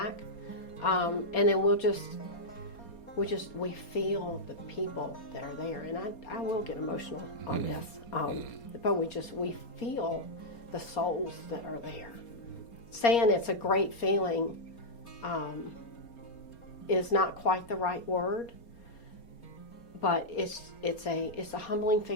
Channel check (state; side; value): late; right; 4.3 ms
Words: and then we feel the people that are there, and I will get emotional on this, but we feel the souls that are there. Saying it's a great feeling is not quite the right word. But it's a humbling